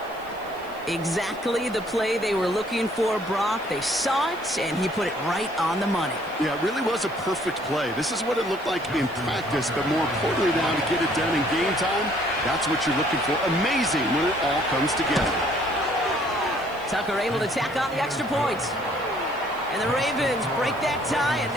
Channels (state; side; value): noise; right; hiss, 25 dB below the sound